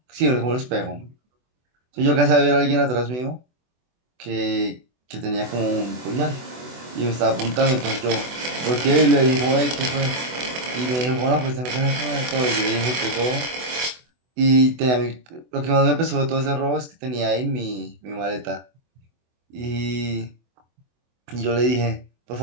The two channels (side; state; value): left; late; 24 ms